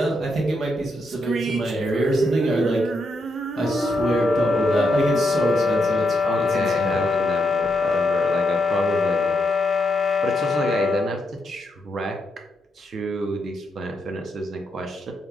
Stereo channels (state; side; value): normal; both; correlation 0.81